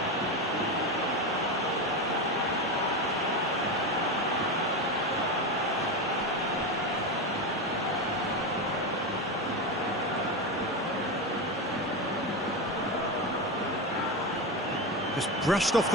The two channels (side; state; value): both; normal; correlation 0.17